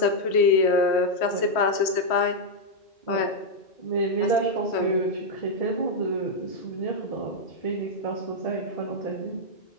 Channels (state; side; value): late; right; 3.1 ms